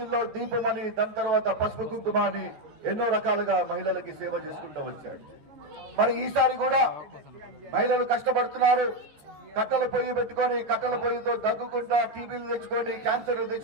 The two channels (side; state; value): left; late; 14 ms